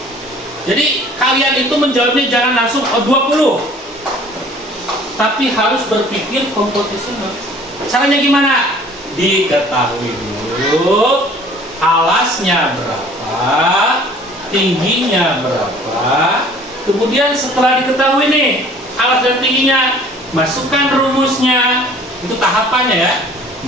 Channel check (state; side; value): normal; both; correlation 0.51